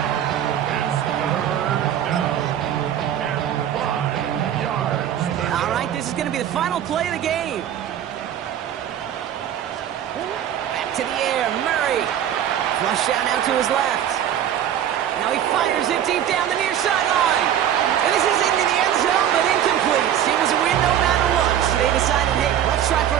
This is going to be the final play of the game. Back to the air, Murray. Flush down now to his left. Now he fires it deep down the near sideline. And this is into the end zone, but incomplete. It was a win no matter what. So they decided, hey, let's try for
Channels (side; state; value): left; quieter; 10.3 dB